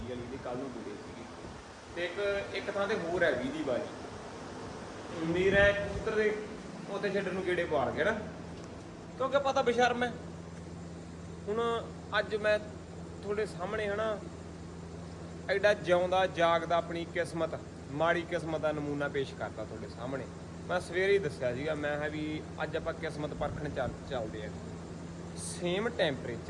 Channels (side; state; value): both; identical; correlation 1.00